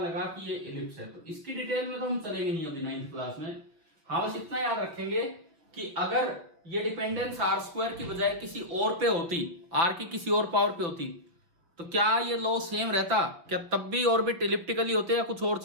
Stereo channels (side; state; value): left; late; 5.9 ms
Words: कि ये इलिप्स है। तो इसकी डिटेल में तो हम चलेंगे नहीं अभी 9th क्लास में। हाँ, बस इतना याद रखेंगे कि अगर ये डिपेंडेंस आर स्क्वायर की बजाय किसी और पे होती, आर की किसी और पावर पे होती, तो क्या ये लॉ सेम रहता? क्या तब भी ऑर्बिट इलिप्टिकली होते या कुछ और